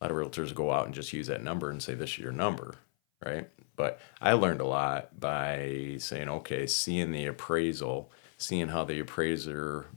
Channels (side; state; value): right; silent; 55 dB below the other